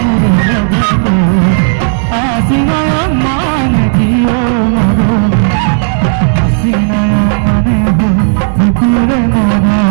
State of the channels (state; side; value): silent; left; digital silence